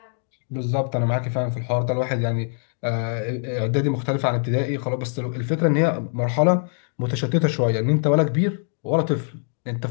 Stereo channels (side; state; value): right; silent; 63 dB below the other